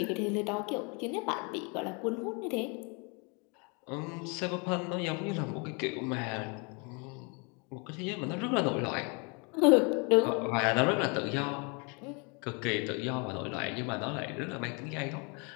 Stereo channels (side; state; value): right; quieter; 33.0 dB